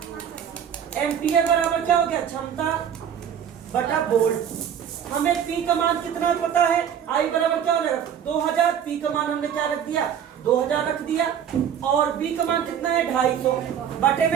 एम्पियर बराबर क्या हो गया, क्षमता बटा वोल्ट। हमें P का मान कितना पता है, I बराबर क्या हो जाएगा, 2000। P का मान हमने क्या रख दिया, 2000 रख दिया, और V का मान कितना है, 250 बटे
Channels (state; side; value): quieter; left; 8.7 dB